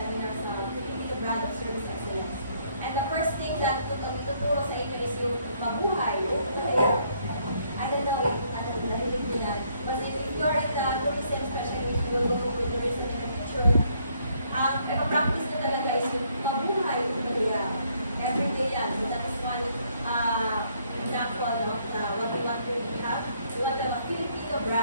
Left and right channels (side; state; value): both; inverted; correlation -0.69